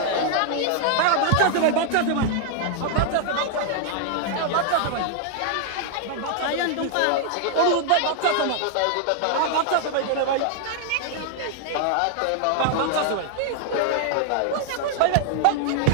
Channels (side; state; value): both; different; correlation 0.00